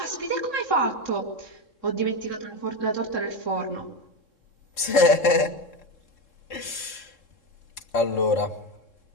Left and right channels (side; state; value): right; late; 3.7 ms